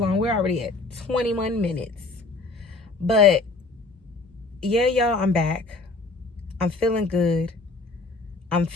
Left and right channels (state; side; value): quieter; right; 3.4 dB